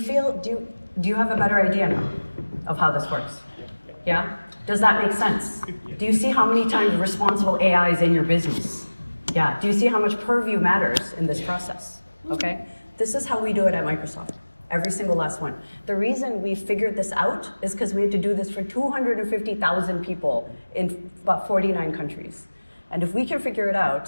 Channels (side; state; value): both; inverted; correlation -1.00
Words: have a better idea now of how this works? Yeah? Does that make sense? Do you see how many times responsible AI is in your business? Yeah. Do you see how much Purview matters in this process? Okay? This is how we do it at Microsoft. Every single last one. The reason we figured this out is because we had to do this for 250,000 people in about 49 countries. And if we can figure it